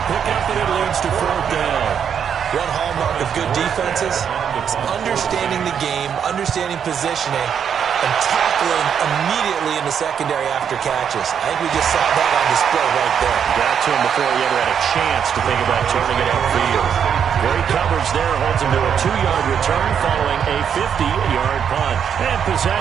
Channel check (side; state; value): left; quieter; 7.9 dB